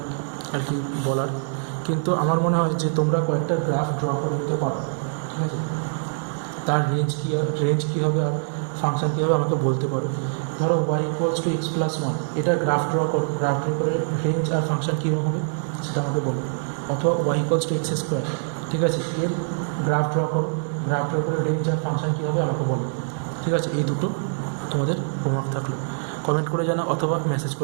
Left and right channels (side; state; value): left; silent; 59 dB below the other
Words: আর কি বলার। কিন্তু আমার মনে হয় যে তোমরা কয়েকটা গ্রাফ ড্র করে নিতে পারো, ঠিক আছে? তার রেঞ্জ কী হবে আর ফাংশন কী হবে আমাকে বলতে পারো। ধরো Y equals to X plus one, এটা গ্রাফ ড্র করো, গ্রাফ ড্র করে রেঞ্জ আর ফাংশন কীরকম হবে সেটা আমাকে বলো। অথবা Y equals to X square, ঠিক আছে, এর গ্রাফ ড্র করো, গ্রাফ ড্র করে রেঞ্জ আর ফাংশন কী হবে আমাকে বলো। ঠিক আছে, এই দুটো তোমাদের হোমওয়ার্ক থাকলো। কমেন্ট করে জানাও অথবা মেসেজ